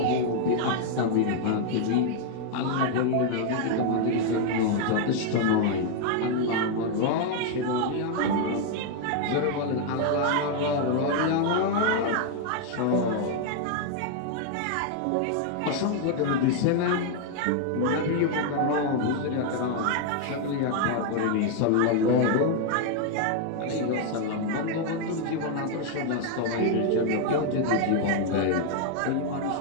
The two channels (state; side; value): different; both; correlation 0.00